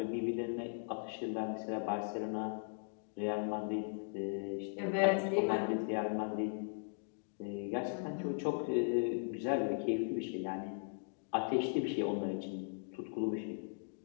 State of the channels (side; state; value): right; silent; digital silence